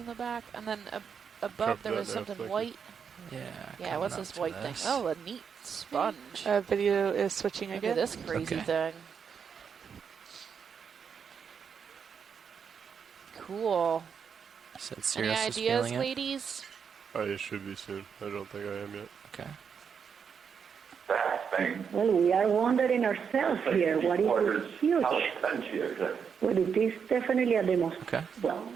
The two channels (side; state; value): left; quieter; 6.8 dB